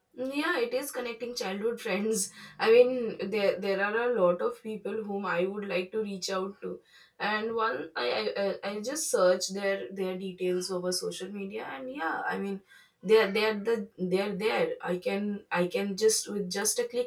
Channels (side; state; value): both; identical; correlation 1.00